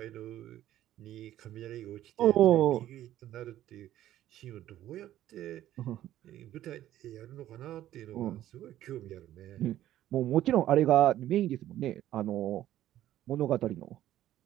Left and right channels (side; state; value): left; quieter; 13.0 dB